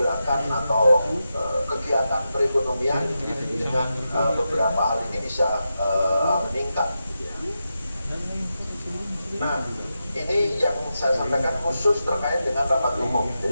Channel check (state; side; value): inverted; both; correlation -0.89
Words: pergerakan atau kegiatan perekonomian dengan beberapa hal ini bisa meningkat. Nah, ini yang saya sampaikan khusus terkait dengan rapat umum.